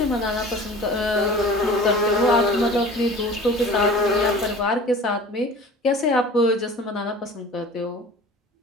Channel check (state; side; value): normal; both; correlation 0.41